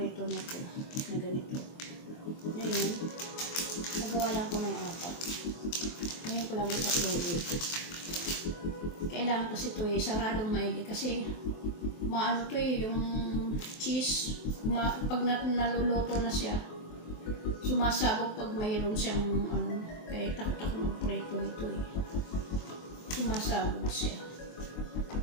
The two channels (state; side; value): late; right; 23 ms